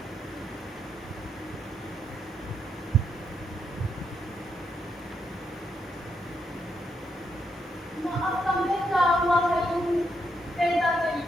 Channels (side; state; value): both; normal; correlation 0.80